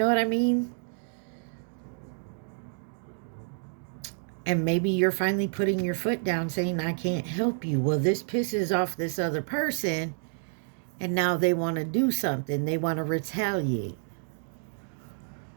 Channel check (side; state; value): left; silent; digital silence